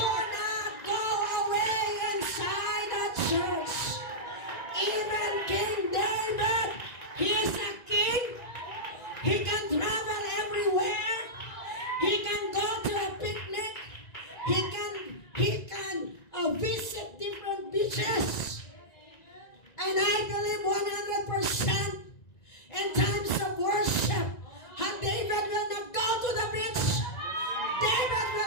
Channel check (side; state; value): right; late; 1.9 ms